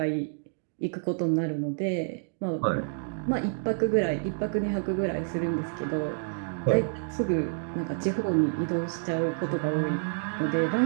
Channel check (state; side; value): silent; left; digital silence